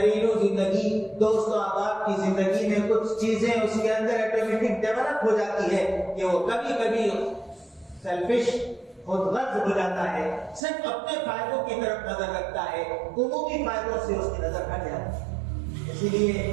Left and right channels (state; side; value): drops out; left; at 10.6 s